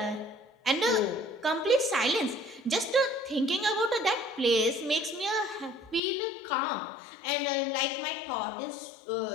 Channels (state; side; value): drops out; right; at 6.0 s